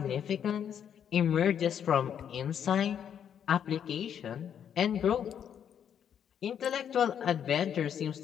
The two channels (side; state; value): right; quieter; 8.7 dB